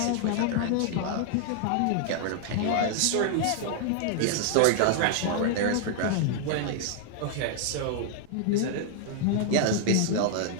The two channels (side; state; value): both; different; correlation 0.00